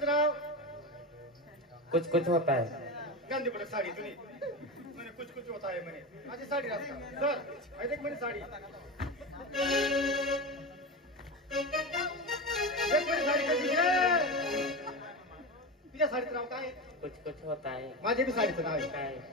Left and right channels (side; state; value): both; normal; correlation 0.21